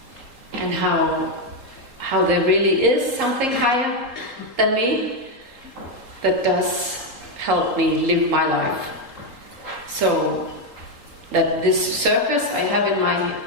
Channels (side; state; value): left; late; 3.8 ms